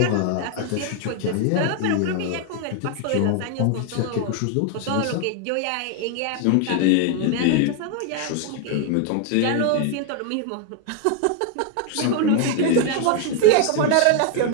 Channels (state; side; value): different; both; correlation 0.01